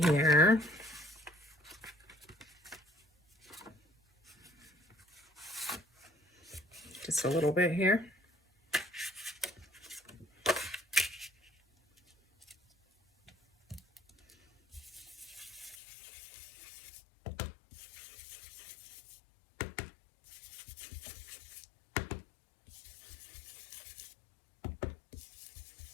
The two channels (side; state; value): right; drops out; at 15.8 s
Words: here. Just a little bit here.